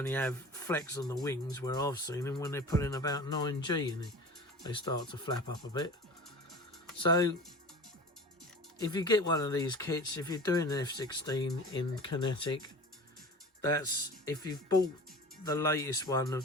have flex on the wings, where I've seen them when they're putting about 9G in it, they start to flap up a bit. So if you get one of these kits, if you're doing an F-16 in Kinetic, that's, if you've bought the latest one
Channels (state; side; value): normal; both; correlation 0.37